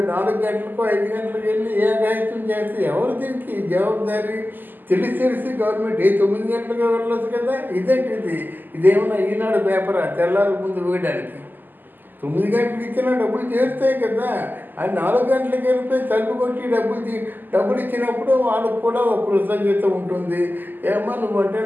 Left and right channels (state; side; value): late; left; 0.088 ms